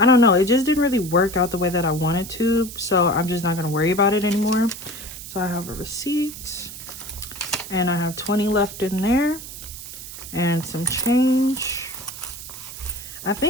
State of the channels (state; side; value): noise; right; hiss, 12 dB below the sound